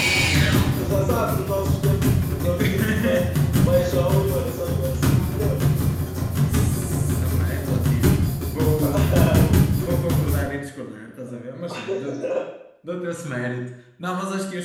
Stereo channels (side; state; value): both; identical; correlation 1.00